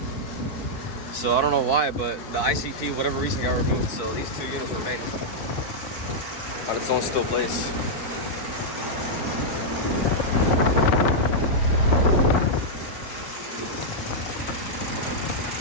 So I don't know why, but the ICP, whatever reason, got removed. So these two units remain on its own still place.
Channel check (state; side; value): late; right; 4.5 ms